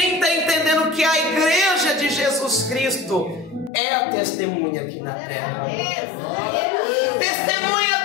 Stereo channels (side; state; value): right; drops out; at 3.7 s